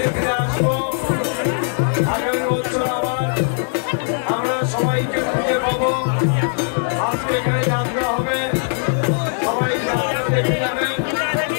ফিরে আসবো। আগামী বছর আবার আমরা সবাইকে খুঁজে পাবো। আজকে এখানে যাত্রা হবে, সবাই যাত্রা দেখে যাবেন।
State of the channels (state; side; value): silent; right; digital silence